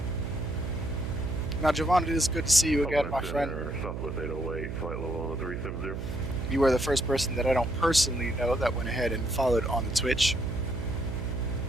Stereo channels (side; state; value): right; noise; hum, 5 dB below the sound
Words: Now, Javon, it is good to see you again, my friend. Southwest 808, flight level 370. You were the first person that I don't personally know that went ahead and followed on the Twitch.